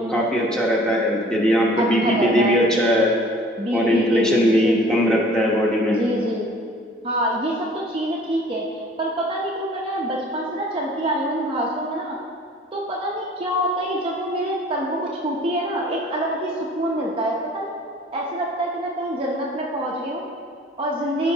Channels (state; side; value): normal; both; correlation 0.51